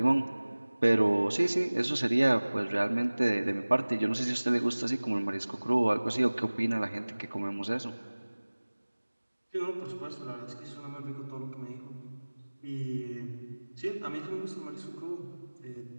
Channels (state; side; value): inverted; both; correlation -1.00